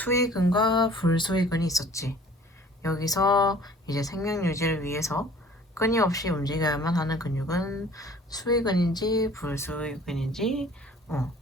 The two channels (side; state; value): both; normal; correlation 0.51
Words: 불수의근이 있었지. 여기서 이제 생명 유지를 위해서 끊임없이 움직여야만 하는 근육은 수의근인지 불수의근인지